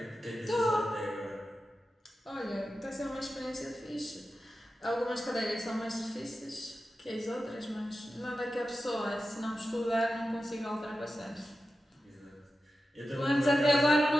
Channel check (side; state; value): both; normal; correlation 0.92